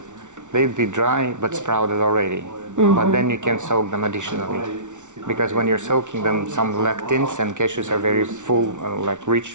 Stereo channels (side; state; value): left; late; 0.86 ms